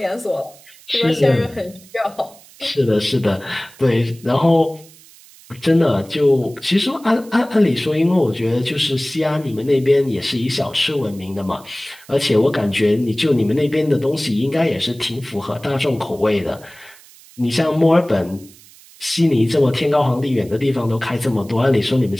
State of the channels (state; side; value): noise; right; hiss, 24 dB below the sound